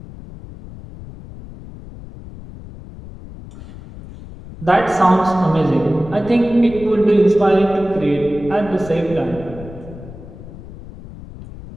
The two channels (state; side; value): noise; left; rumble, 15 dB below the sound